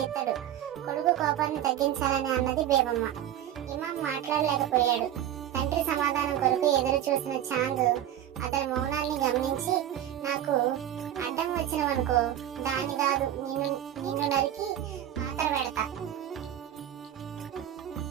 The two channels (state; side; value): quieter; left; 11.5 dB